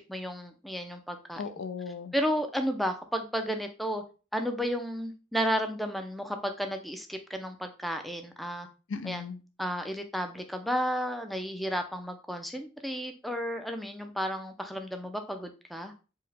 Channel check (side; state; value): both; normal; correlation 0.76